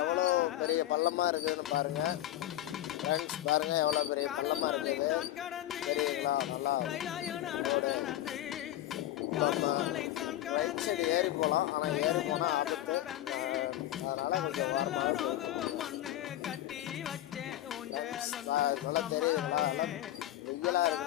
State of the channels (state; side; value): quieter; right; 13.7 dB